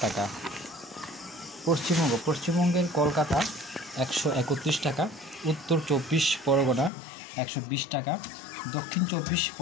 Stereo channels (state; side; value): drops out; right; at 6.9 s